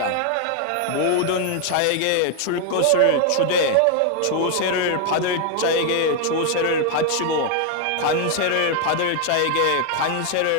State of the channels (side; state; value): both; different; correlation 0.00